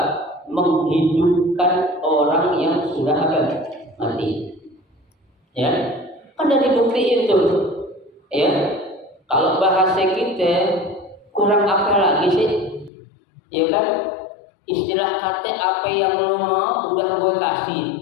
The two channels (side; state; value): right; drops out; at 12.9 s